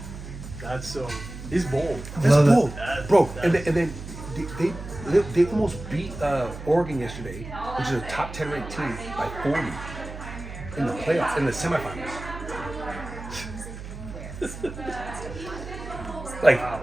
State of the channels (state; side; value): noise; right; hum, 11 dB below the sound